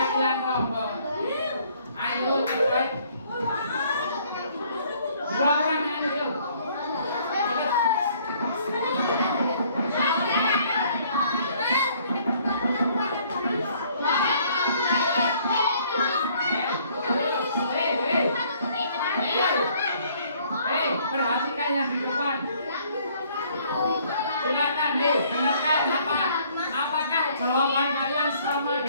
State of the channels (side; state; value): both; inverted; correlation -0.61